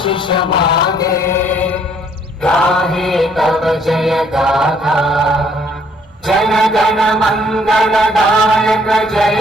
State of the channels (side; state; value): both; normal; correlation 0.64